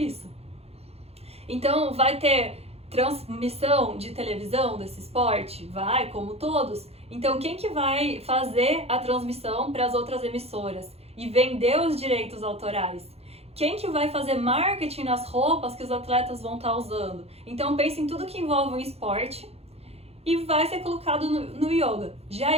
Então vai ter transmissão de televisão desse esporte? Vai, como todos. Então quem que vai fazer a transmissão para as outras emissoras e vender os direitos autorais? Quem que vai fazer marketing nas roupas que os atletas vão estar usando? Então pense em tudo que envolve o esporte e vai ser colocado no yoga. Já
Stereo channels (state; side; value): late; left; 0.29 ms